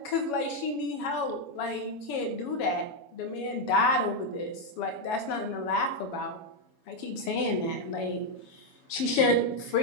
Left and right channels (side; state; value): right; late; 7.1 ms